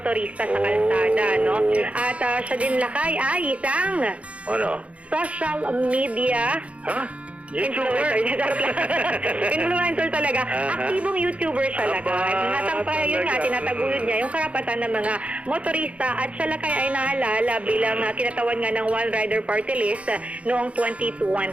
sa kalsada, no? At siya din Lakay ay isang social media influencer. Influencer talaga. Aktibong YouTuber siya Lakay. Yun nga, tinataguyod niya yung karapatan ng mga motorista, at siya Lakay ay nahalala bilang kinatawan nga ng One Rider Party List noong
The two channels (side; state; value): left; late; 0.063 ms